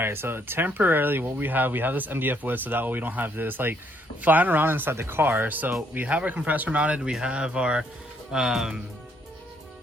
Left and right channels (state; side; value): normal; both; correlation 0.70